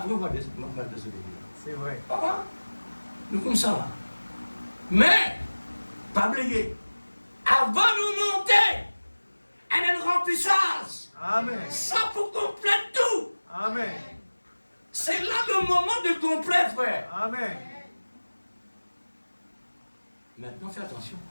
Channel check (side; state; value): both; inverted; correlation -1.00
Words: on va désobéir. C'est vrai. Ah, nous comme ça là. Mais, pas oublier, avant de nous monter, elle a une remplissage. Amen. Ça pour compléter tout. Amen. C'est là le moment de complet, frère. Amen. Maintenant, fais attention.